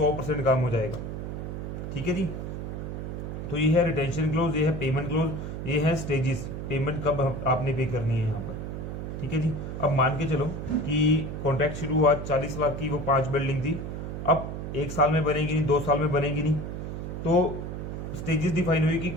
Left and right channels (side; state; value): right; noise; hum, 6 dB below the sound